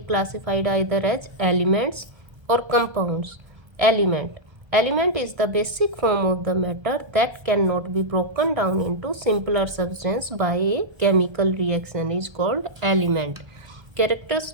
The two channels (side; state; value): left; late; 1.3 ms